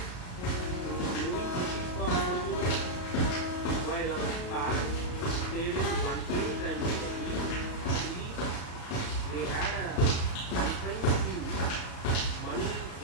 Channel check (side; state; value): right; late; 35 ms